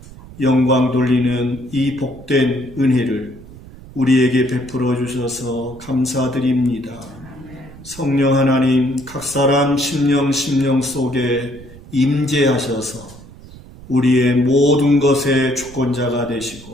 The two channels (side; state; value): right; noise; rumble, 18 dB below the sound